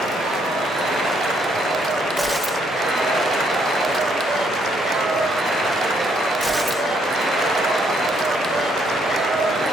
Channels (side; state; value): both; normal; correlation 0.70